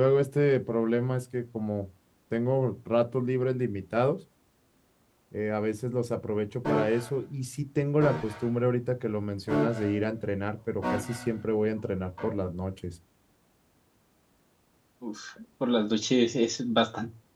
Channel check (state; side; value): identical; both; correlation 1.00